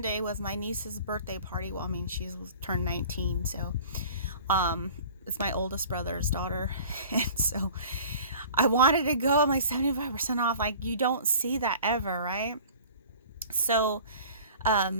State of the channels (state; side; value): inverted; both; correlation -0.45